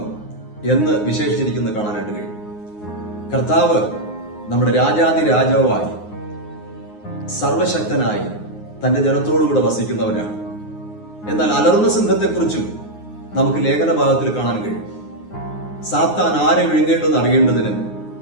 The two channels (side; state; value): right; late; 9.6 ms